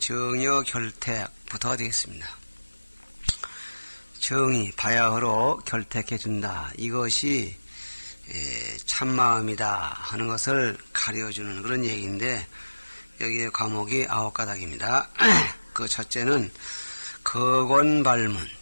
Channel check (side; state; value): both; inverted; correlation -1.00